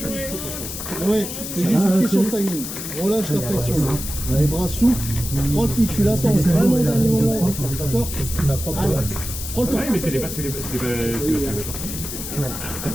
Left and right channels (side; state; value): left; noise; hiss, 7 dB below the sound